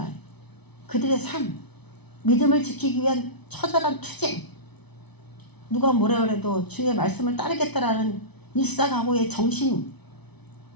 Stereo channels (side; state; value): right; late; 0.99 ms